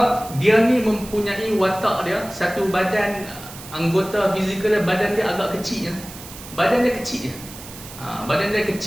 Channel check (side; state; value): right; noise; hiss, 15 dB below the sound